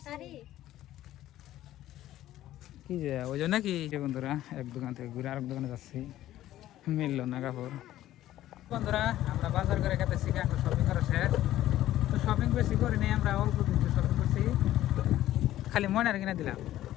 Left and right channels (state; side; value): quieter; right; 13.8 dB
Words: কি যে ওই জন্য কি। বন্ধুরা, এক দোকান থেকে ঘুরে আরেক দোকানে যাচ্ছি, মিললো না কাপড়। বন্ধুরা, আমরা বাজার করে গেতেছি, এখন শপিং করা শেষ। তো শপিং বেশি করি নাই, আমরা অল্প কিছু শপিং করছি, খালি ময়নার কিনে দিলাম।